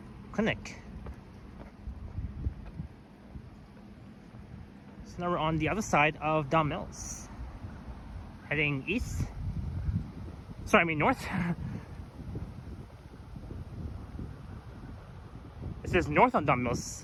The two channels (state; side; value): identical; both; correlation 1.00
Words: Clinic. So now we're on the other side of Don Mills. Heading east. Sorry, I mean north. It says north on Don Mills